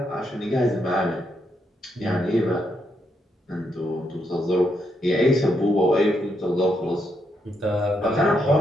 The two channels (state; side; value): normal; both; correlation 0.79